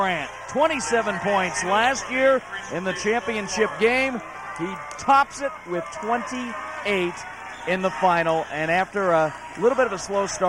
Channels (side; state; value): both; identical; correlation 1.00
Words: 27 points last year in the championship game. He tops it with 28 in the final, and after a little bit of a slow